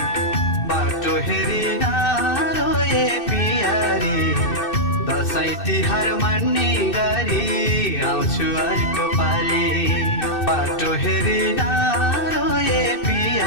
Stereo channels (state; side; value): late; right; 2.6 ms